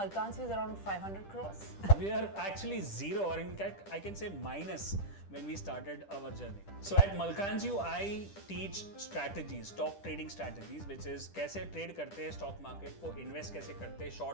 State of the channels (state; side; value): late; right; 10 ms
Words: View is around 500 crores. We are actually zero, or in fact, I can say minus when we started our journey. So at Malkan's View, I teach strategies, stock trading strategies, which is कैसे trade करते हैं stock market को, invest कैसे करते हैं